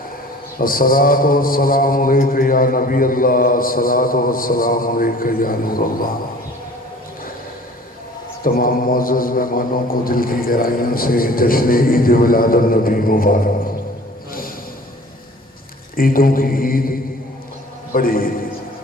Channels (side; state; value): both; normal; correlation 0.47